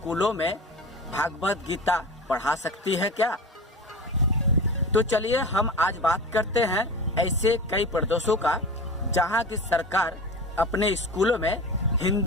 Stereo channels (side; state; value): both; normal; correlation 0.31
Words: में भागवत गीता पढ़ा सकती है क्या? तो चलिए हम आज बात करते हैं ऐसे कई प्रदेशों का जहां की सरकार अपने स्कूलों में